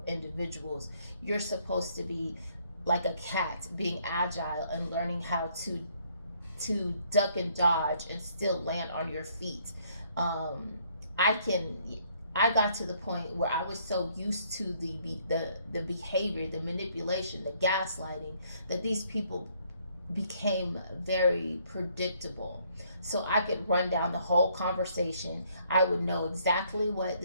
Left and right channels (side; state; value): both; inverted; correlation -0.67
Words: individuals. You're supposed to be like a cat, being agile and learning how to duck and dodge and still land on your feet. um, I can I got to the point where I was so used to the behavior, the manipulation, the gaslighting, that these people became very predictable. So I could run down the whole conversation. I would know exactly what